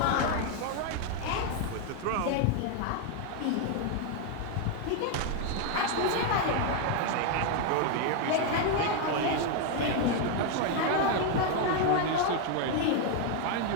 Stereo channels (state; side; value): different; both; correlation 0.01